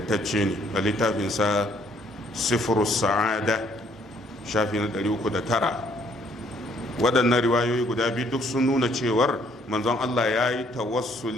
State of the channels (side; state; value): both; normal; correlation 0.65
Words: ne a littafinsa Sifrus Sa'ada shafi na 309. waɗannan riwayoyi guda biyu duk sun nuna cewar manzon Allah ya yi